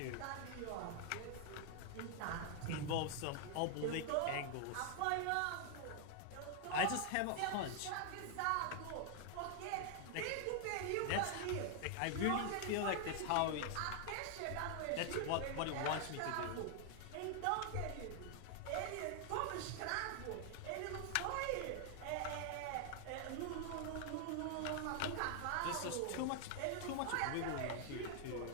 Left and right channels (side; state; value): both; different; correlation 0.00